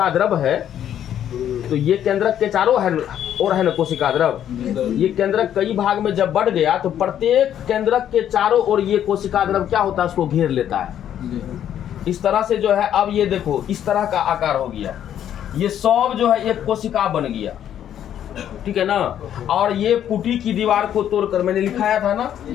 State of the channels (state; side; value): quieter; right; 10.3 dB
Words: द्रव है, तो ये केंद्रक के चारों ओर है ना कोशिका द्रव, ये केंद्रक कई भाग में जब बढ़ गया तो प्रत्येक केंद्रक के चारों ओर ये कोशिका द्रव क्या होता है, उसको घेर लेता है। इस तरह से जो है, अब ये देखो इस तरह का आकार हो गया, ये सब जो है एक कोशिका बन गया, ठीक है ना। और ये पुटी की दीवार को तोड़कर, मैंने लिखाया था ना,